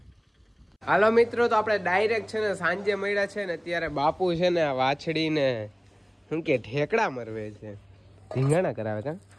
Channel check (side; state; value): both; identical; correlation 1.00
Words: હાલો મિત્રો, તો આપણે ડાયરેક્ટ છે ને સાંજે મળ્યા છે ને, અત્યારે બાપુ છે ને વાછડીને શું કે ઠેકડા મરવે છે, ધીંગાણા કરાવે કા